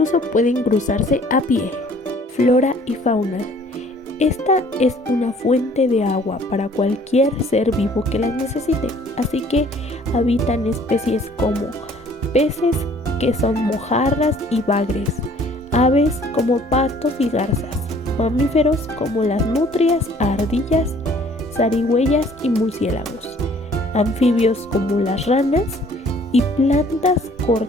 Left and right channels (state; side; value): normal; both; correlation 0.56